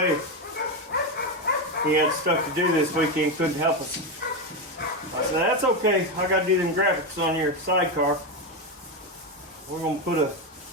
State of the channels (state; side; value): normal; both; correlation 0.11